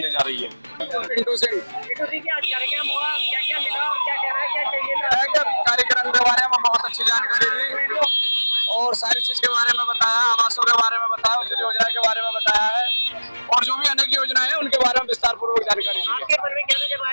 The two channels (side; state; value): both; inverted; correlation -1.00